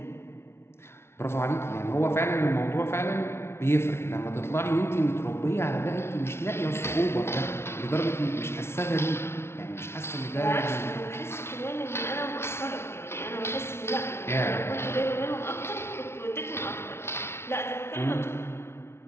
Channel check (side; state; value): right; late; 0.12 ms